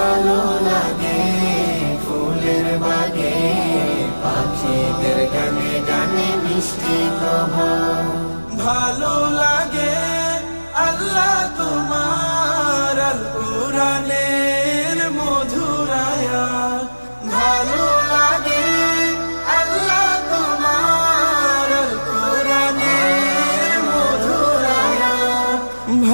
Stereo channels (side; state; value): both; inverted; correlation -1.00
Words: লাগে ফুলের বাগে পাখিদের গানে গানে মিষ্টি প্রভাত। ভালো লাগে আল্লাহ তোমার আল কুরআনের মধুর আয়াত, ভালো লাগে আল্লাহ তোমার আল কুরআনের মধুর আয়াত,